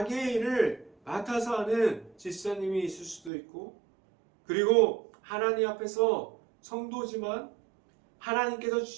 일을 맡아서 하는 집사님이 있을 수도 있고, 그리고 하나님 앞에서 성도지만 하나님께서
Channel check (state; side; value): drops out; left; at 3.3 s